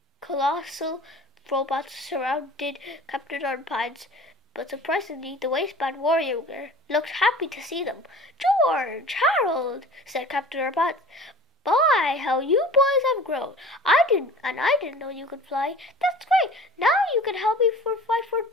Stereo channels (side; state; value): both; normal; correlation 0.43